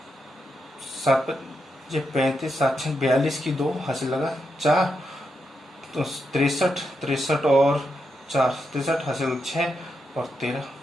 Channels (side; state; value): both; normal; correlation 0.83